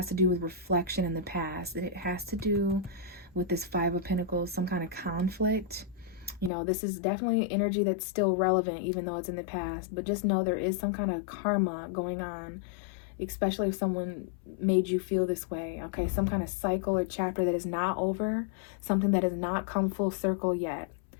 to do with reflection in the past, and it has to do with this 5 of Pentacles, some kind of conflict. You know, this is definitely energy that's still relevant, even though it's in the past. But just know there is some kind of karma going on, especially if someone made you feel this way. Okay, some kind of cycle or chapter that is not over, something that has not come full circle yet.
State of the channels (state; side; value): drops out; right; at 6.5 s